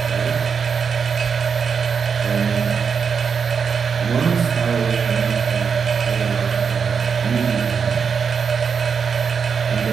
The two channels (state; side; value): quieter; left; 6.2 dB